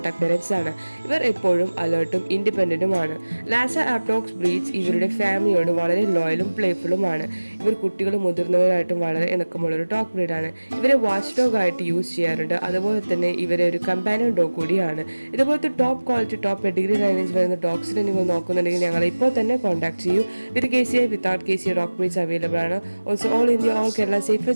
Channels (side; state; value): both; inverted; correlation -1.00